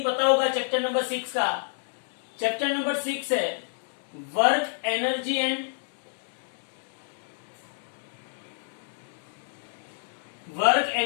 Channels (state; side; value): silent; right; digital silence